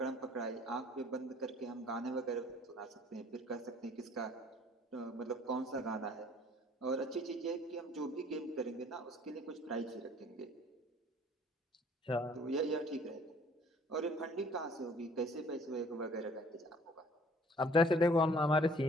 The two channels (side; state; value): both; normal; correlation 0.55